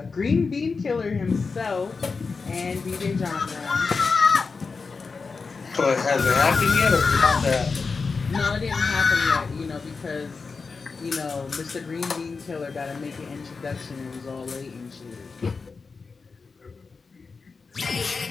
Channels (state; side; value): quieter; right; 4.6 dB